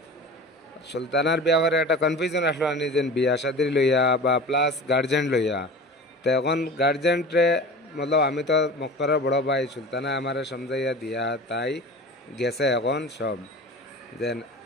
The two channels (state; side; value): normal; both; correlation 0.35